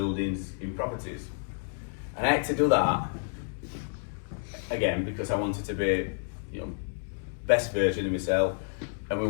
in properties. And I had to do that, again, because I wanted to be, best version of myself, and we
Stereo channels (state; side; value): silent; right; digital silence